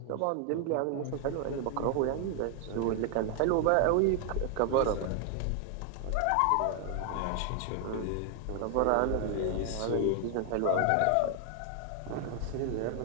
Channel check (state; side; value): different; both; correlation 0.00